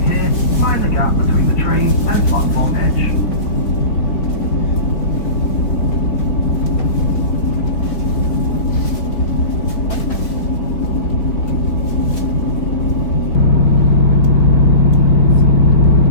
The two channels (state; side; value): late; right; 4.6 ms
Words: here, mind the gap between the train and platform edge.